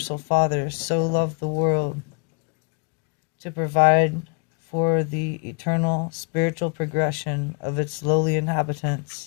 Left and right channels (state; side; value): quieter; right; 35.9 dB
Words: Father so loved the world to provide for the eternal spiritual progression of its lowly